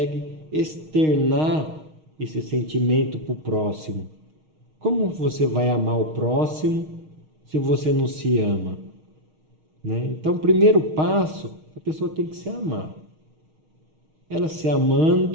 externar esse sentimento para o próximo. Como você vai amar o próximo se você não se ama? Né? Então, o primeiro passo, a pessoa tem que se amar. Ela se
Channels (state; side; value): late; left; 6.4 ms